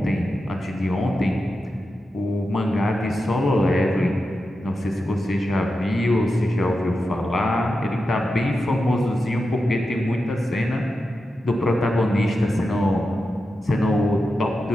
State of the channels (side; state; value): both; normal; correlation 0.90